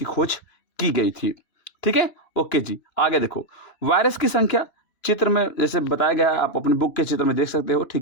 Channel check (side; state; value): right; late; 2.9 ms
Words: खोज की गई थी, ठीक है। ओके जी, आगे देखो वायरस की संख्या चित्र में जैसे बताया गया है, आप अपने बुक के चित्र में देख सकते हो,